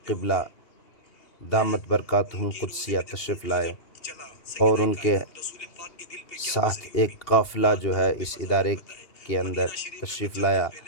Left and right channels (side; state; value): right; late; 2.7 ms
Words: قبلہ دامت برکاتہم قدسیہ تشریف لائے اور ان کے ساتھ ایک قافلہ جو ہے اس ادارے کے اندر تشریف لایا